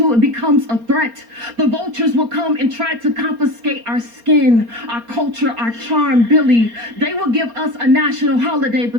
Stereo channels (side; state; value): left; late; 4.3 ms